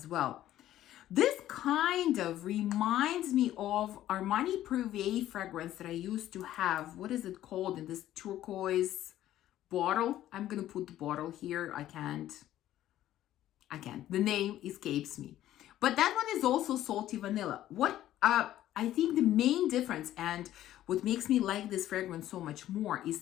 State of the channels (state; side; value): quieter; right; 13.1 dB